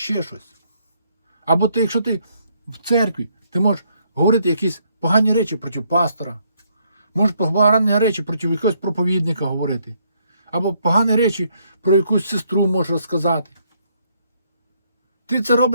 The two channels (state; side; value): inverted; both; correlation -0.71